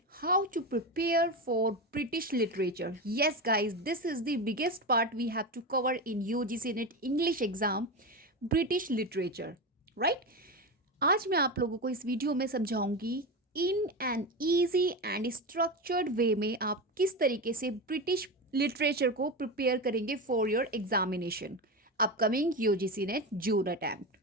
how to prepare for British literature. Yes, guys, this is the biggest part we have to cover in UGC NET English exam, British literature, right? आज मैं आप लोगों को इस video में समझाऊंगी in an easy and structured way में आप किस तरीके से ब्रिटिश लिटरेचर को प्रिपेयर करेंगे for your examination upcoming UGC NET June attempt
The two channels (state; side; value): normal; both; correlation 0.20